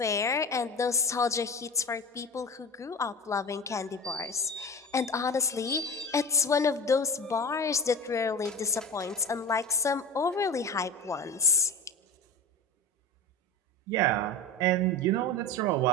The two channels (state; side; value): normal; both; correlation 0.27